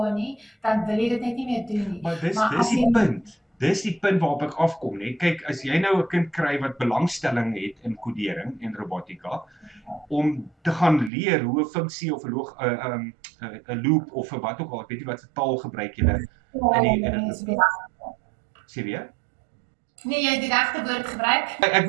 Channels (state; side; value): drops out; left; at 11.1 s